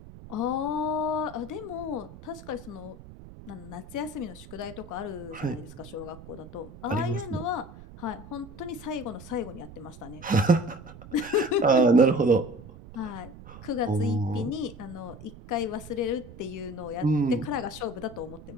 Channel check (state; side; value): noise; right; rumble, 16 dB below the sound